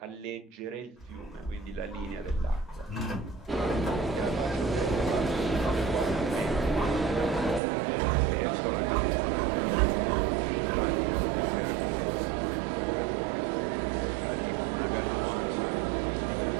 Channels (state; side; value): drops out; left; at 7.6 s